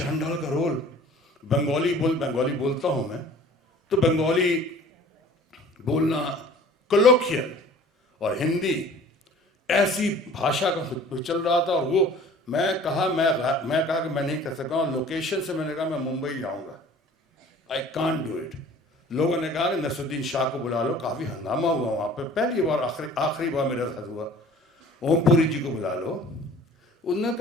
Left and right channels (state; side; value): normal; both; correlation 0.48